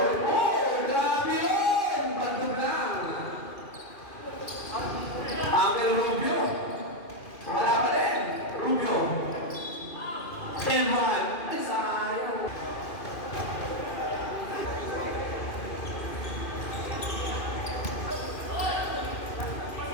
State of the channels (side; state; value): right; late; 2.4 ms